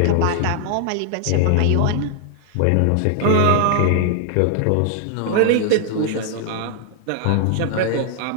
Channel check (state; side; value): different; both; correlation 0.00